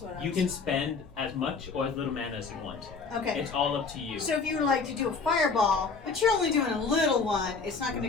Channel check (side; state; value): right; quieter; 4.7 dB